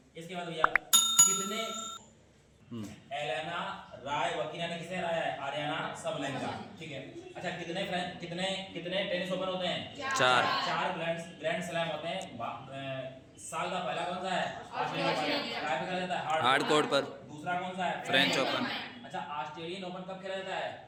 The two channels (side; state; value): both; identical; correlation 1.00